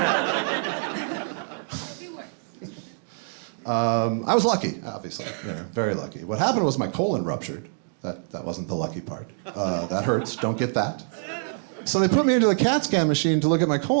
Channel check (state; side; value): silent; left; digital silence